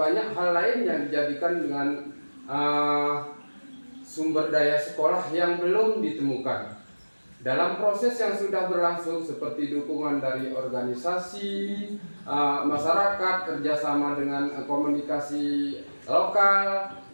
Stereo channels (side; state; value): both; inverted; correlation -1.00